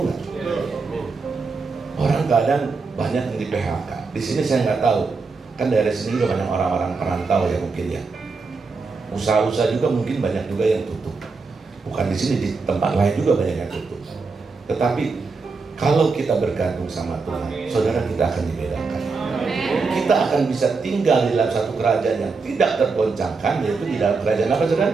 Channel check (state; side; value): quieter; left; 4.4 dB